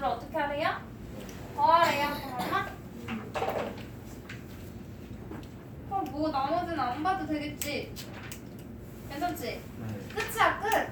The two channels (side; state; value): both; identical; correlation 1.00